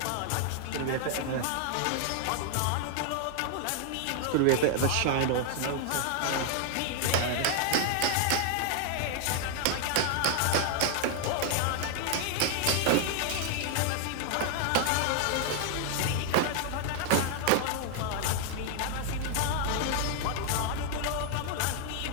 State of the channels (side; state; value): both; different; correlation 0.00